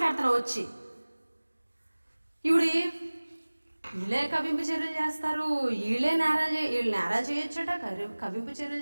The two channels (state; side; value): inverted; both; correlation -1.00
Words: వచ్చి ఇవిడి వీళ్ళే కవింపు చర్యలు చేస్తారు, వీళ్ళు నేరాలు చేయొచ్చట, కవింపు చర్యలు